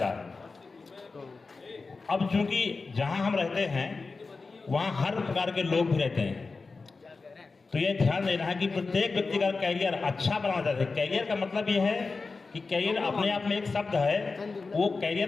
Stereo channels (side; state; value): right; quieter; 4.1 dB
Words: है। अब चूंकि जहां हम रहते हैं वहां हर प्रकार के लोग भी रहते हैं, तो ये ध्यान देना है कि प्रत्येक व्यक्ति का कैरियर अच्छा बनाना चाहते हैं। कैरियर का मतलब ये है कि कैरियर अपने आप में एक शब्द है, वो